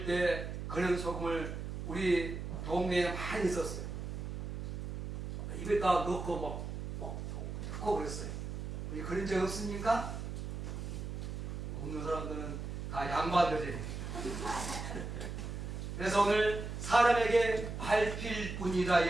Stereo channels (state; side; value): noise; right; hum, 6 dB below the sound